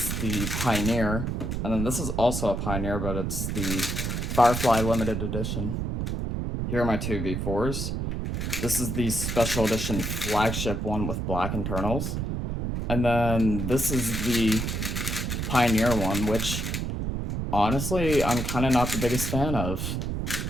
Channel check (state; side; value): noise; right; rumble, 2 dB below the sound